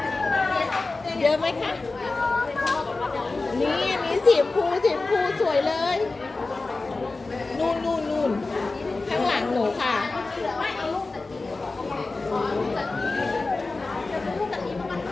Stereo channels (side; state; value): right; quieter; 3.5 dB